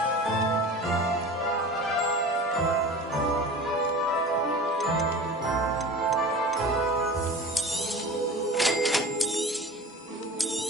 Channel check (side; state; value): both; normal; correlation 0.36